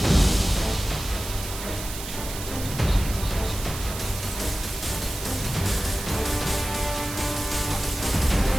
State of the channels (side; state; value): right; noise; hiss, 9 dB below the sound